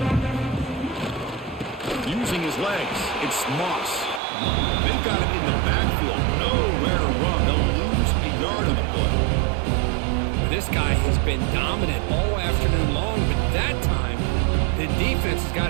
Using his legs, it's Moss. They've got him in the backfield, nowhere to run. They'll lose a yard on the play. This guy has been dominant all afternoon long, but that time, the defense has got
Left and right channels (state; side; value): drops out; left; at 4.2 s